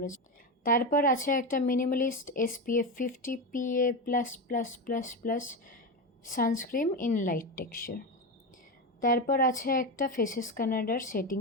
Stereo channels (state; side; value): normal; both; correlation 0.17